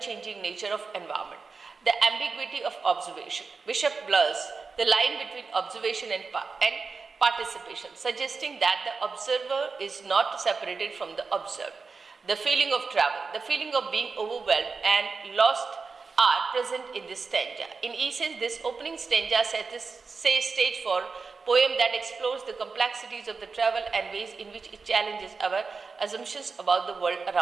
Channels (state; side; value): quieter; left; 4.6 dB